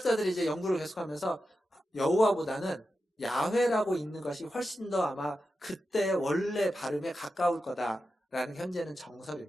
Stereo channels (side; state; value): both; normal; correlation 0.90